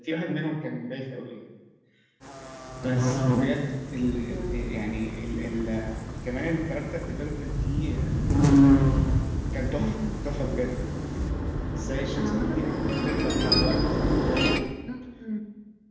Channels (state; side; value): identical; both; correlation 1.00